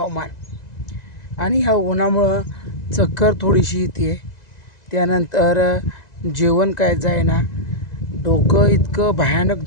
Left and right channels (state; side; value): late; right; 2.0 ms